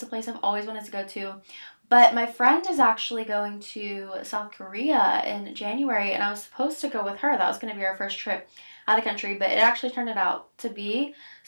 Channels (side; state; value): both; inverted; correlation -1.00